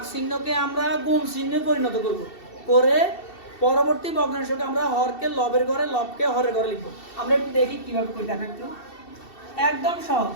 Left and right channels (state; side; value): late; right; 2.7 ms